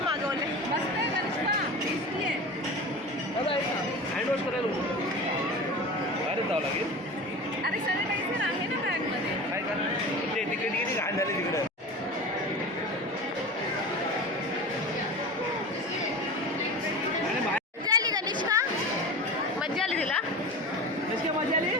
मस्त आहे कनिष्का, टेस्टी आहे. हँडवॉश करायला अरे जावं लागेल. अरे सॅनिटायझर आहे ना बॅगमध्ये. काय का ते तिकडे किती घाण झाले तिकडे. मजा आली कनिष्का, मजा आली तिला. कशी मजा आली.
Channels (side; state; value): both; normal; correlation 0.31